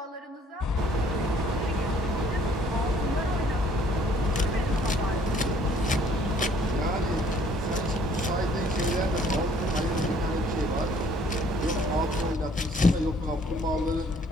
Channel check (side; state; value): both; normal; correlation 0.60